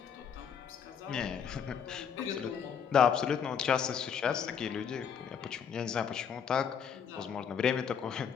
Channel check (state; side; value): quieter; right; 7.6 dB